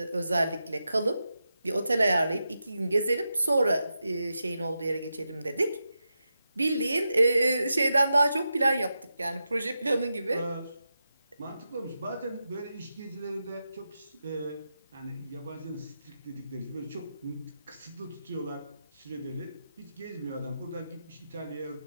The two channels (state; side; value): inverted; both; correlation -0.88